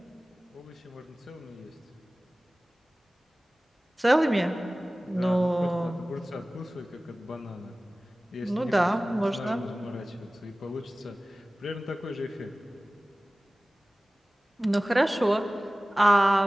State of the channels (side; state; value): both; normal; correlation 0.98